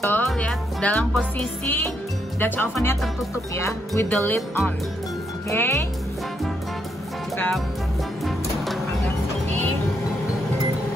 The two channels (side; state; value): both; normal; correlation 0.77